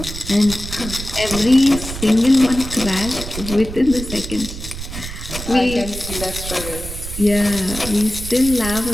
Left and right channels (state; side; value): noise; right; rumble, 9 dB below the sound